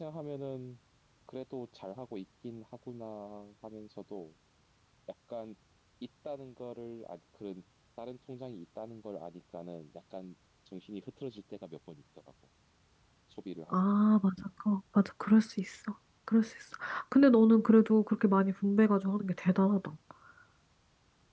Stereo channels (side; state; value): both; identical; correlation 1.00